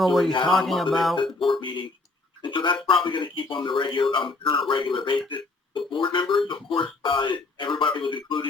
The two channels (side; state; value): right; quieter; 3.4 dB